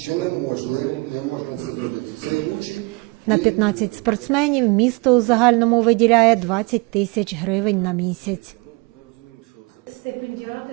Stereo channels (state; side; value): quieter; left; 27.0 dB